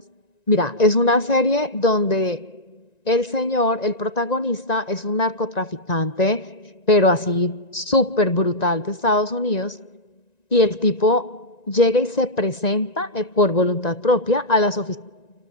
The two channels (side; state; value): right; late; 1.9 ms